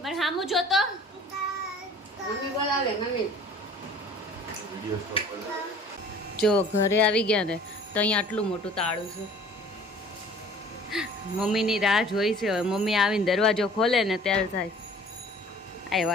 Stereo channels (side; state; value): both; normal; correlation 0.49